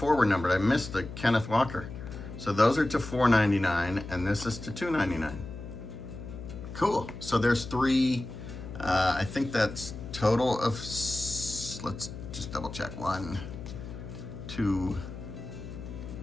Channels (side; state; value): left; noise; hum, 11 dB below the sound